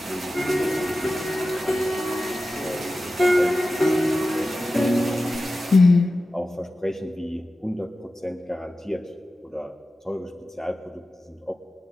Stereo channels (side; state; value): both; normal; correlation 0.94